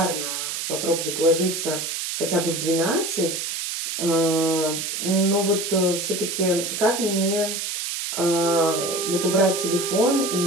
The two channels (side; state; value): right; noise; hiss, 3 dB below the sound